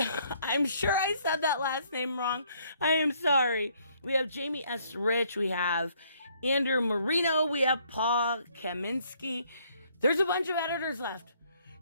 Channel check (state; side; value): inverted; both; correlation -0.66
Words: I'm sure I said that last name wrong. I am sorry. We have Jamie S. Rich. We have Andrew Marino. We have Paul Kaminsky. There's a bunch of editors left.